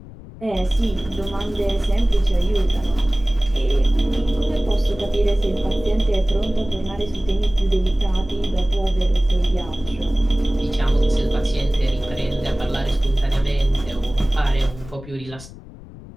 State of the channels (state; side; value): noise; left; rumble, 17 dB below the sound